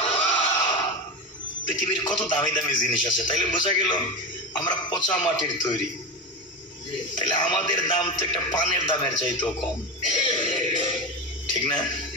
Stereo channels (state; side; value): normal; both; correlation 0.20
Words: পৃথিবীর কত দামি দামি জিনিস আছে, তাইলে বোঝা গেল আমরা পচা মাটির তৈরি। তাহলে আমাদের দাম তো একটা পানের দামের চাইতেও কম, ঠিক না?